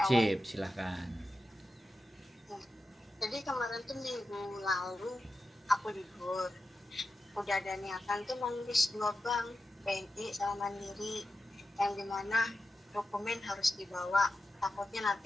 wajib, silahkan. Nah, jadi kemarin tuh minggu lalu aku libur. Udah ada niatan tuh nulis 2 bank, BNI sama Mandiri, yang dimana dokumen harus dibawa. Takutnya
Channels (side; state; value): both; normal; correlation 0.91